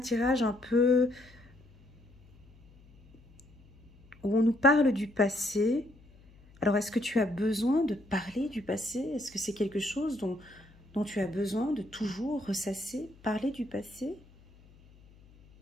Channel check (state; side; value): noise; left; hum, 26 dB below the sound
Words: un peu où on nous parle du passé. Alors, est-ce que tu as besoin de parler du passé? Est-ce que c'est quelque chose dont tu as besoin de toujours ressasser, parler du passé?